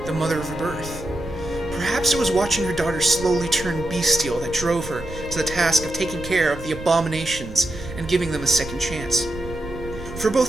the mother of her birth. Perhaps it was watching her daughter slowly turn bestial that drove her to the task of taking care of the abominations and giving them a second chance. For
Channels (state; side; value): noise; right; rumble, 13 dB below the sound